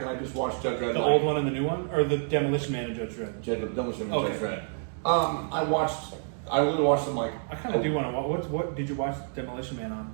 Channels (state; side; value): silent; left; digital silence